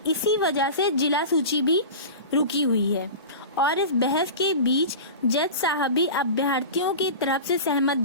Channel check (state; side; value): inverted; both; correlation -0.32